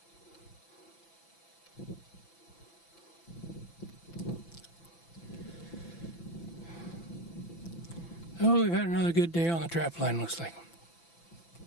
Oh, we've had another good day on the trap line, looks like.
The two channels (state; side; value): late; right; 5.9 ms